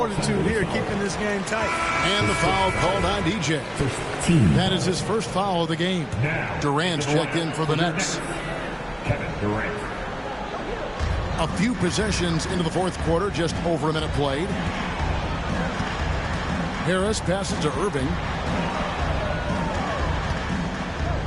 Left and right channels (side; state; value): both; identical; correlation 1.00